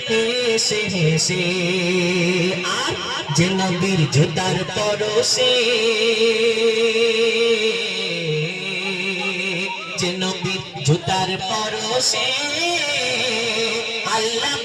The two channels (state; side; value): identical; both; correlation 1.00